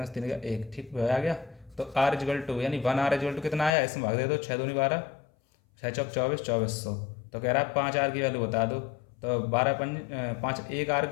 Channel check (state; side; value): drops out; right; at 3.7 s